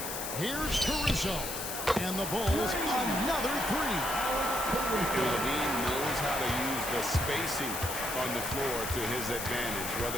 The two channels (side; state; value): left; noise; hiss, 5 dB below the sound